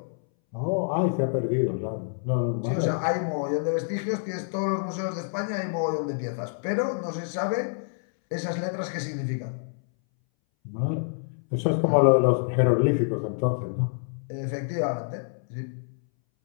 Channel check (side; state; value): right; silent; 60 dB below the other